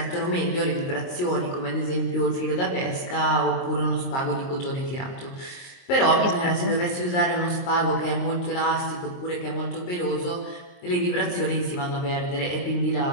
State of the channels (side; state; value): right; late; 23 ms